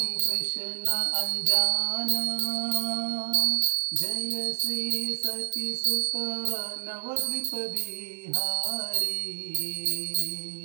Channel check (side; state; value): left; silent; 59 dB below the other